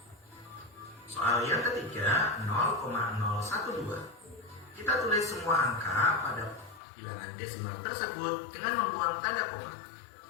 Soal yang ketiga, 0,012. Kita tulis semua angka pada bilangan desimal tersebut dengan membuang tanda koma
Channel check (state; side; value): drops out; right; at 6.8 s